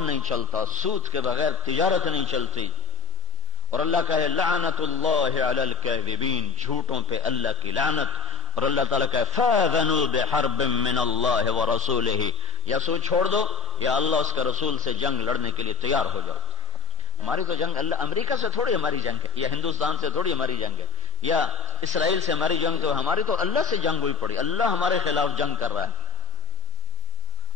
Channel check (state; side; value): quieter; right; 3.2 dB